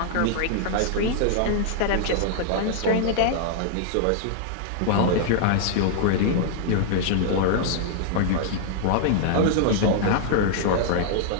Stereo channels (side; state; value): both; different; correlation -0.01